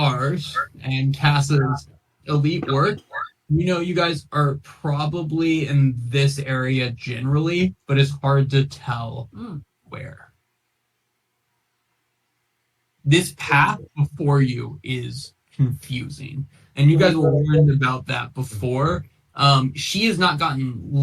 and Cass's elite work, you guys are probably in this area generally, but it's hard to tell where. This path before you is confusing, and you guys will learn about that before. She has not gotten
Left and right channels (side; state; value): both; identical; correlation 1.00